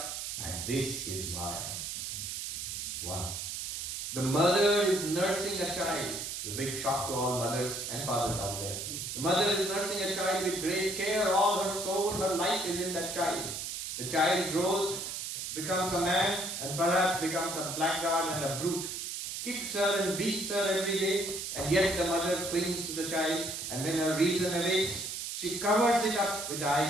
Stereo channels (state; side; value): noise; right; hiss, 5 dB below the sound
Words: And this is Maya. 1. The mother is nursing a child. The big shock to all mothers and fathers out there. The mother is nursing a child with great care. All her soul, her life is in that child. The child grows, becomes a man, and perhaps becomes a blackguard and a brute. Kicks her and beats her every day, and yet the mother clings to the child, and when her reason awakes, she covers it up with the